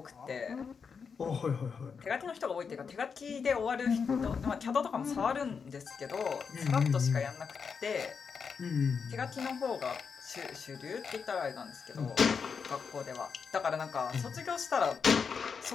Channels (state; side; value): quieter; right; 5.9 dB